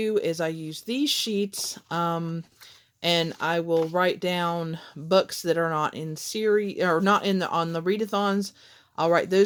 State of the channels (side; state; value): both; identical; correlation 1.00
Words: is I use these sheets, and I will write down books that are not in series or not in on the readathons. I'll write